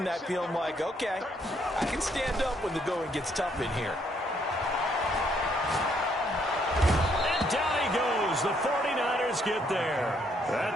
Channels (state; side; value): normal; both; correlation 0.70